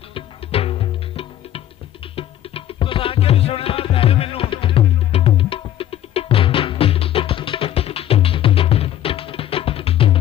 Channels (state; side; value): quieter; right; 12.1 dB